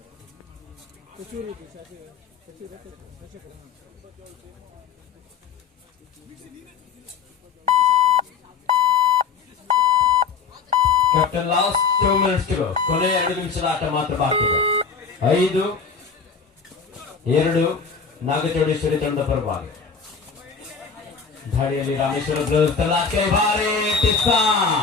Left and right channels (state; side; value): quieter; right; 5.7 dB